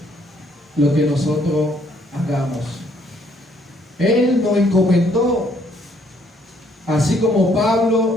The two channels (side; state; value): both; normal; correlation 0.66